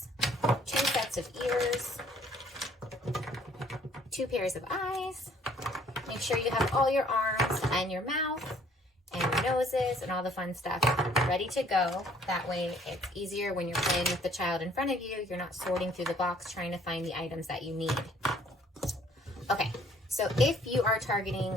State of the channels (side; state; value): both; normal; correlation 0.60